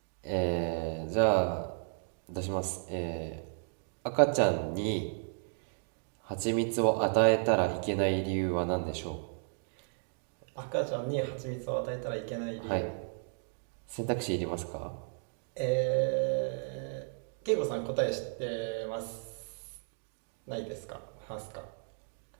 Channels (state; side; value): silent; left; digital silence